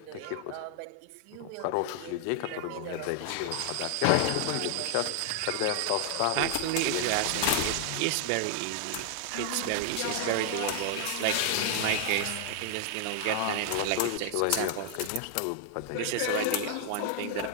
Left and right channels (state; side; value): different; both; correlation 0.00